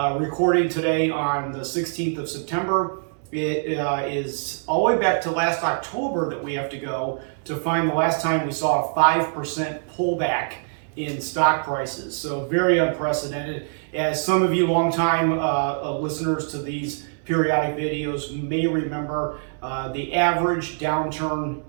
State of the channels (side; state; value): left; silent; digital silence